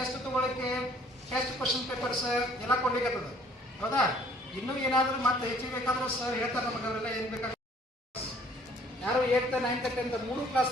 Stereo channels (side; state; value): both; normal; correlation 0.58